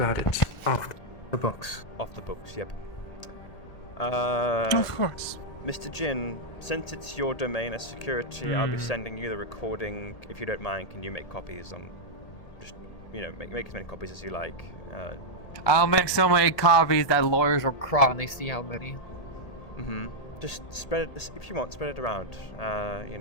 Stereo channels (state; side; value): late; right; 1.8 ms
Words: it off the books. Off the books, yep. Of course. Mr. Jin, since it's your domain as security, I'll be sending you the recording. If you don't mind, can you make copies on... Just, you know, make as many copies as you like. I'll make so many copies that lawyers will cry when they see how many. Just spread it, if you want, spread it around. You